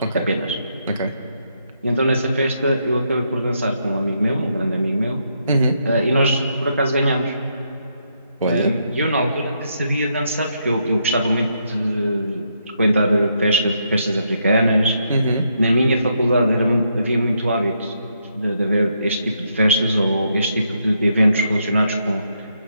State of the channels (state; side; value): inverted; both; correlation -0.77